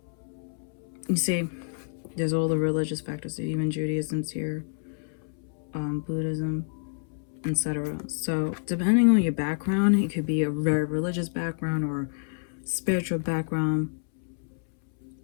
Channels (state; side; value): silent; right; 59 dB below the other